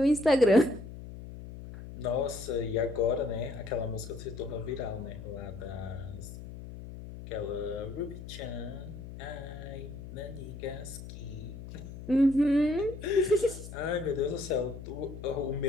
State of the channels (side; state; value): left; noise; hum, 12 dB below the sound